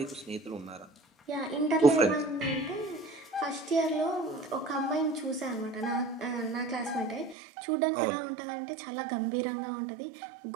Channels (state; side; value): drops out; left; at 7.4 s